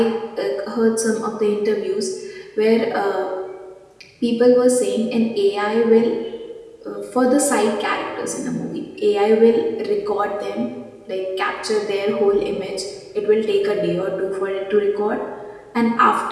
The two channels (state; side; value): identical; both; correlation 1.00